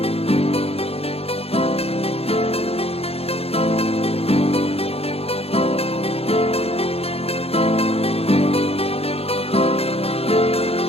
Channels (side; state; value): right; late; 0.29 ms